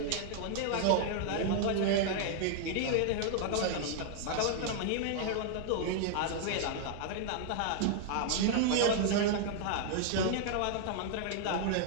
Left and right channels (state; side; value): different; both; correlation -0.01